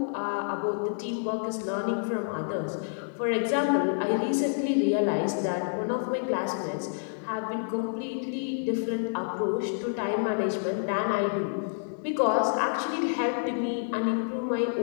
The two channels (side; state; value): right; silent; 59 dB below the other